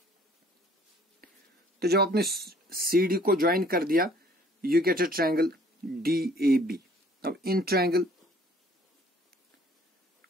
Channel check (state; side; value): normal; both; correlation 0.57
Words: तो जब आपने सी डी को ज्वाइन कर दिया, you get a triangle D A B. अब in triangle